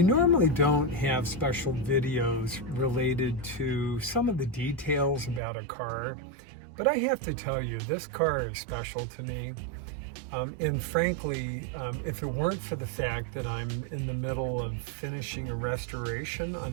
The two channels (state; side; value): drops out; left; at 5.4 s